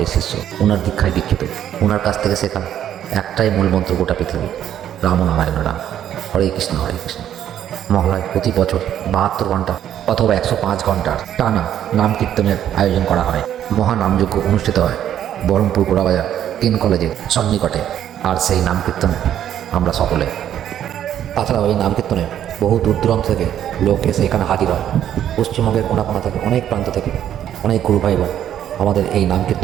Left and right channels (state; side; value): quieter; left; 10.6 dB